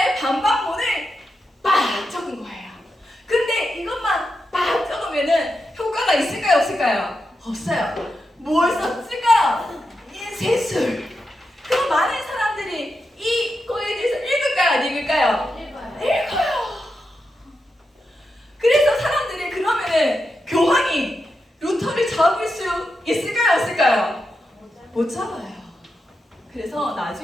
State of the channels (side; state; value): both; normal; correlation 0.87